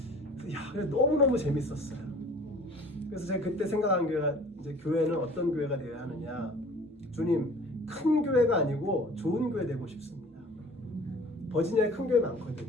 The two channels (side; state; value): both; normal; correlation 0.47